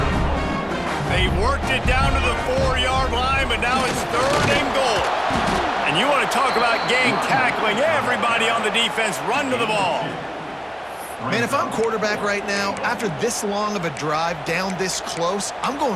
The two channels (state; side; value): identical; both; correlation 1.00